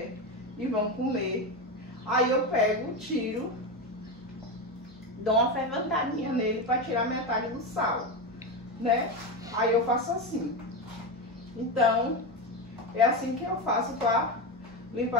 e vão comer, aí eu pego, tiro, dou uma ferventadinha nele para tirar metade do sal, né? Aí eu faço assim. Então, é assim que eu faço para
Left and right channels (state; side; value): normal; both; correlation 0.16